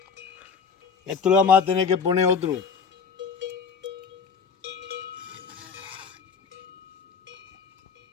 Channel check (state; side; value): quieter; right; 5.8 dB